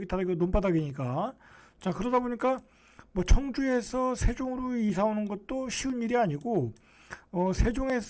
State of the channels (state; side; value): identical; both; correlation 1.00